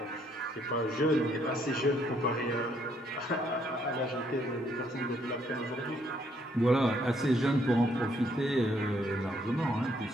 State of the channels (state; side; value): normal; both; correlation 0.69